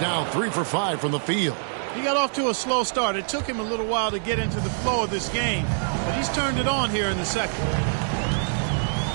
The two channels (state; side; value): silent; left; digital silence